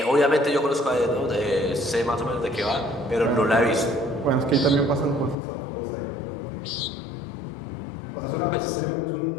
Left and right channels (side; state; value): right; drops out; at 5.4 s